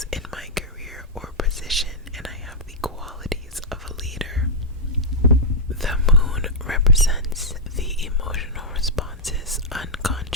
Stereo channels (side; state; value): both; normal; correlation -0.07